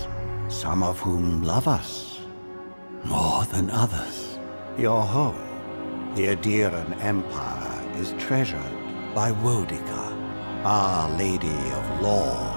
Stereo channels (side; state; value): both; inverted; correlation -1.00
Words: some of whom love us more than others. Your home, the Adiran Empire, is treasured by Wodica, Our Lady of